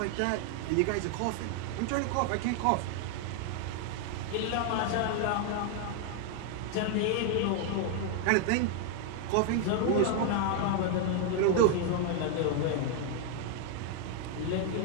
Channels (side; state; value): both; different; correlation 0.00